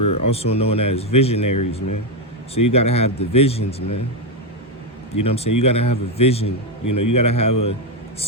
also known as visionaries, man. So you got to have the visions, man. You know what I'm saying? You got to have a vision. You know, you got to have a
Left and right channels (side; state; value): both; normal; correlation 0.06